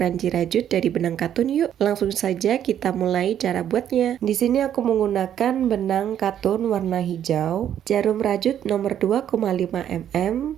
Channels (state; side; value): quieter; left; 10.1 dB